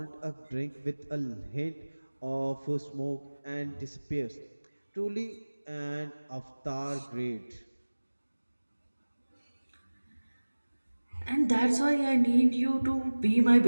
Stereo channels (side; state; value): both; inverted; correlation -1.00